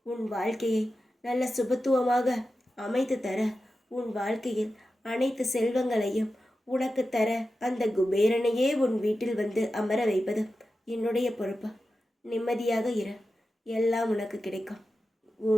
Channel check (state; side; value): normal; both; correlation 0.92